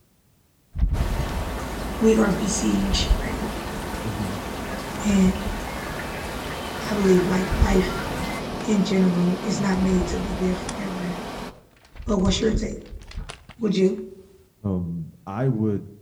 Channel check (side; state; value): both; identical; correlation 1.00